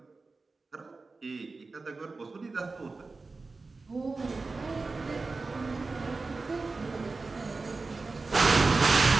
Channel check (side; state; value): left; quieter; 3.8 dB